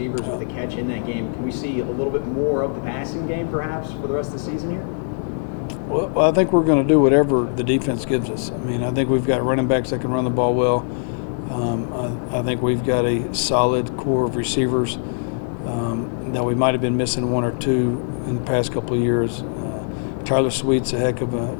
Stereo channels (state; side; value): silent; right; digital silence